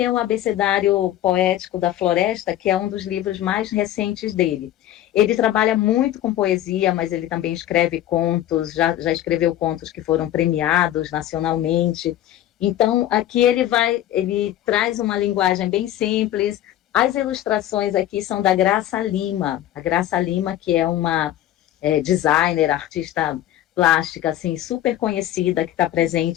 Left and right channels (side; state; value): right; quieter; 12.9 dB